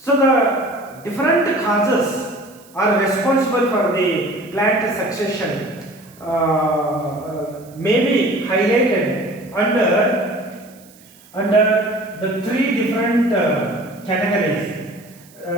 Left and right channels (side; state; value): right; noise; hiss, 26 dB below the sound